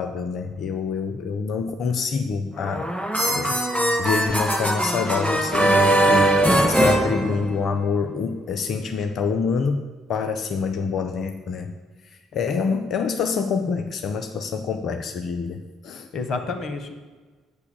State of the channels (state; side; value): normal; both; correlation 0.72